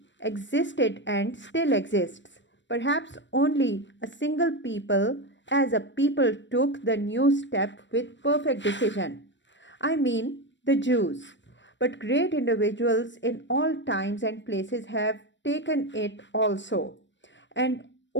existed and still exists. Perhaps only a single people as a people took the new step with perfect decision. I mean the Jews. But great individuals in all times and places have taken it also. And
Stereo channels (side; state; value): right; late; 0.53 ms